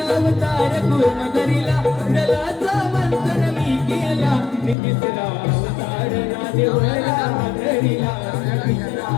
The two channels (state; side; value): drops out; right; at 4.8 s